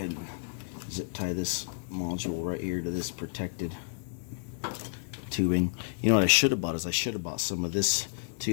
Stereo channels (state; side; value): silent; right; digital silence